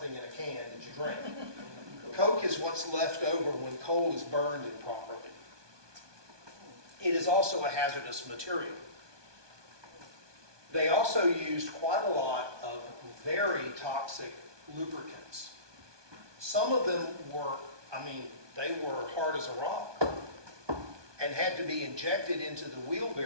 in a can that you drink. Coke is what's left over when coal is burned improperly. It is also a hazardous material. They also used quite a lot of very toxic lubricants. Some of them were, they were hard as a rock and had to be injected into the wheel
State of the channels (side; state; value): left; late; 1.2 ms